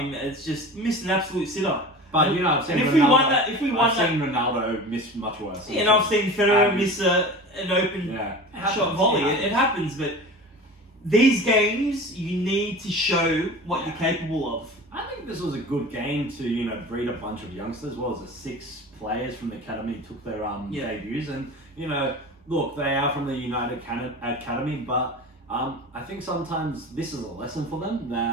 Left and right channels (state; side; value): normal; both; correlation 0.35